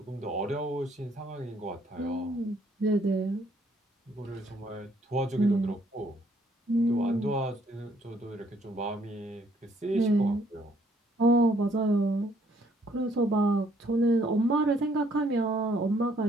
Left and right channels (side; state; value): both; normal; correlation 0.66